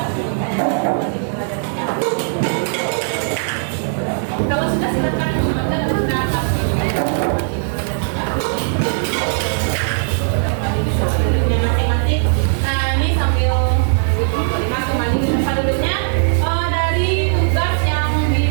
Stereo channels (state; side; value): silent; left; digital silence